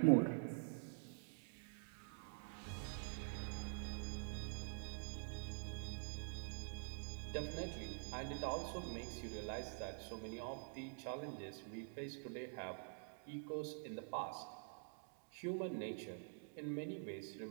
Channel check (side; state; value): left; silent; digital silence